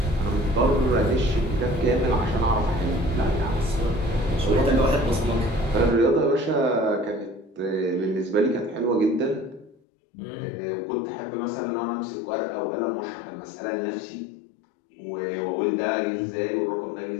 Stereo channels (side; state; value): right; drops out; at 9.8 s